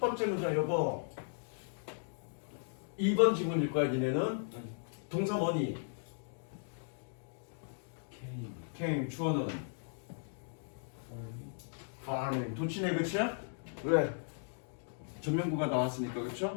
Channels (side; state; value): right; silent; digital silence